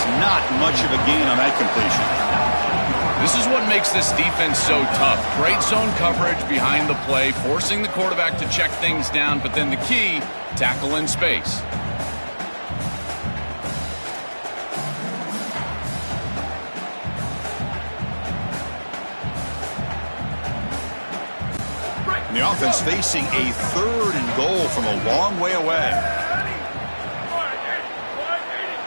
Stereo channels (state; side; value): inverted; both; correlation -1.00